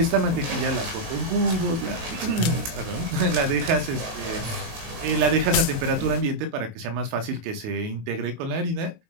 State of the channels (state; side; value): late; left; 18 ms